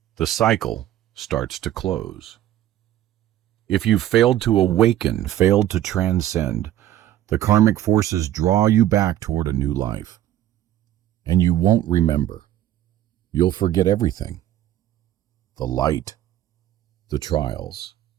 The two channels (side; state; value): left; quieter; 12.6 dB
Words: The cycle starts to close. If you've failed to awaken, failed to transcend, the karmic forces draw you back toward a new life. And you won't remember. You'll forget everything. The light, the trials,